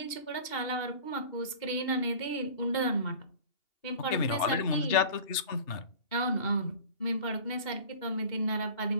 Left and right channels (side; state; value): right; late; 2.8 ms